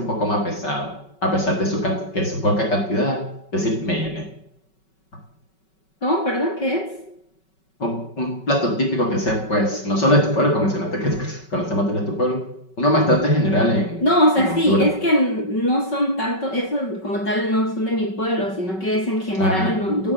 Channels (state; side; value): late; right; 5.3 ms